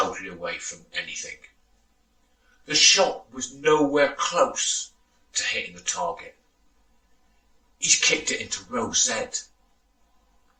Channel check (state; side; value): identical; both; correlation 1.00